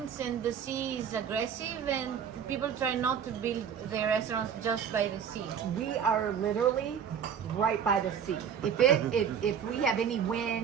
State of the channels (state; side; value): quieter; left; 7.9 dB